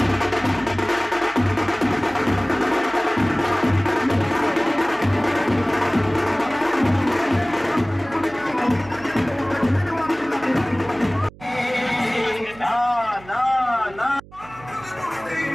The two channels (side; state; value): right; noise; hum, 21 dB below the sound